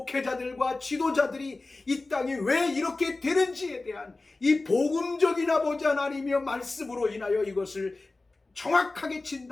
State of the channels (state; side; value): quieter; right; 3.3 dB